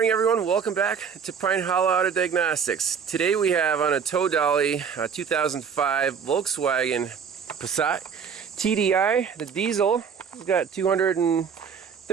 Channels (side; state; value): left; quieter; 6.7 dB